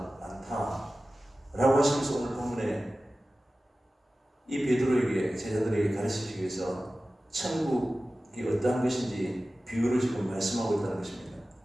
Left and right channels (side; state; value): both; normal; correlation 0.96